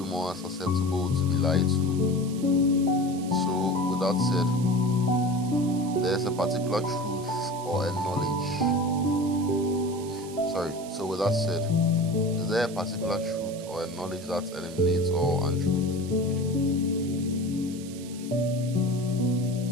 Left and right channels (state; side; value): noise; right; hiss, 17 dB below the sound